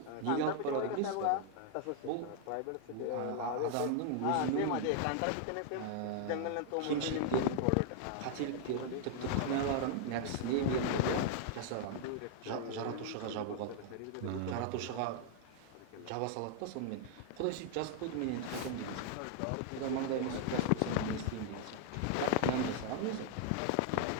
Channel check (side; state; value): both; different; correlation 0.00